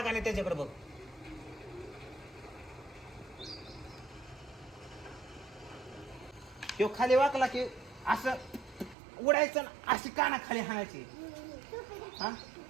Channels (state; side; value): drops out; left; at 9.0 s